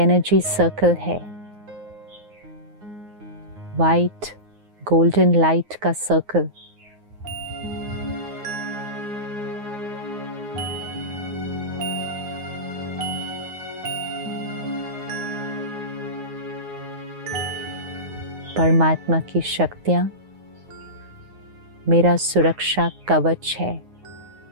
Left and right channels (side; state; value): left; late; 9.6 ms